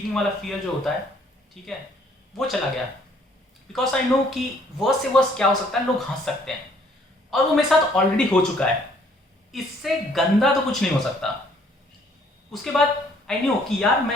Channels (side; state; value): both; normal; correlation 0.62